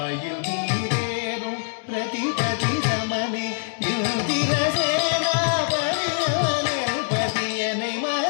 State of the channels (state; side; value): silent; right; 63 dB below the other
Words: நீரேறும் பிரதிபதி சமனே இந்திரசேனா பரியவனே பதி என்னை